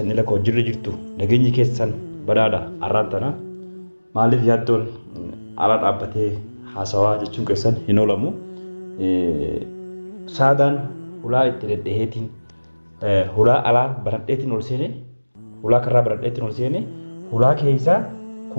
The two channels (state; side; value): inverted; both; correlation -1.00